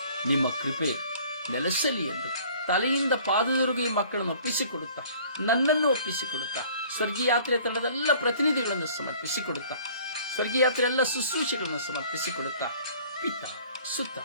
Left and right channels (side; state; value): both; inverted; correlation -0.52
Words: ನಿಮ್ಮ ಕೃಪೆ ನೆಲೆಸಲಿ ಎಂದು ತಲೆಯಿಂದ ಪಾದದವರೆಗೆ ಈ ಮಕ್ಕಳನ್ನು ಒಪ್ಪಿಸಿಕೊಡುತ್ತಾ, ನನ್ನನ್ನು ಒಪ್ಪಿಸಿಕೊಡುತ್ತಾ, ಸ್ವರ್ಗೀಯ ಯಾತ್ರೆ ತಂಡದೆಲ್ಲ ಪ್ರತಿನಿಧಿಗಳನ್ನು ಸಮರ್ಪಿಸಿಕೊಡುತ್ತಾ, ಸ್ವರ್ಗೀಯ ಯಾತ್ರೆ ಎಲ್ಲ ಶುಶ್ರೂಷೆಗಳನ್ನು ಸಮರ್ಪಿಸಿಕೊಡುತ್ತಾ, ಪಿತ, ಸುತ್ತ